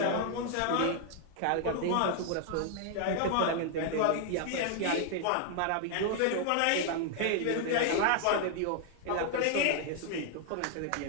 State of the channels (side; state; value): both; different; correlation 0.00